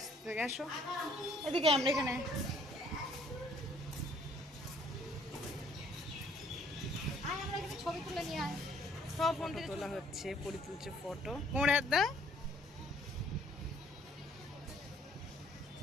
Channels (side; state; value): both; normal; correlation 0.62